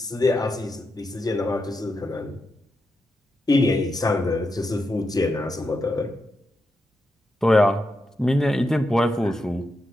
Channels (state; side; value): normal; both; correlation 0.86